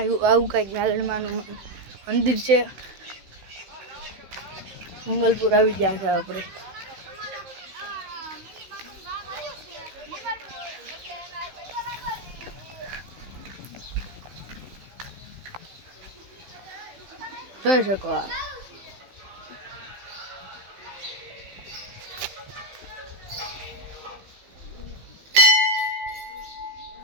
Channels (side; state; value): left; late; 15 ms